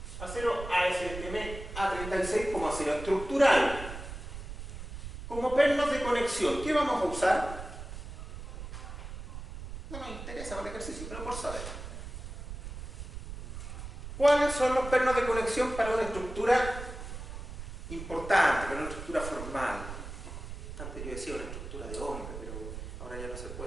Acero ASTM A36 como acero estructural. Como pernos de conexión, ¿qué vamos a usar? No nos interesa para el ejercicio, pero por saber. ¿Cuáles son los pernos de conexión para una estructura importante, para una estructura formal? Antes yo decía una estructura de hombre, pero ahora ya no se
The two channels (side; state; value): right; noise; rumble, 10 dB below the sound